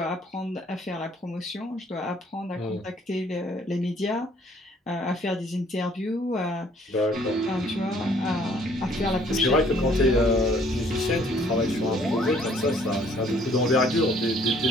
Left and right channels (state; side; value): normal; both; correlation 0.61